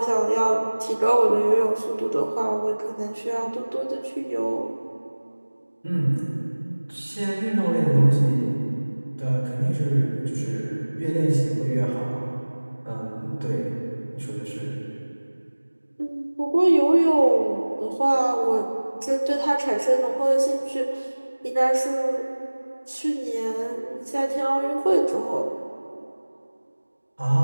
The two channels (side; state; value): both; inverted; correlation -1.00